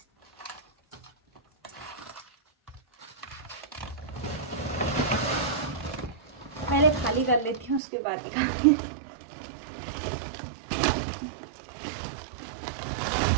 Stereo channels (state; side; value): drops out; left; at 7.8 s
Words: पहले खाली कर लेती हूँ उसके बाद दिखाऊंगी।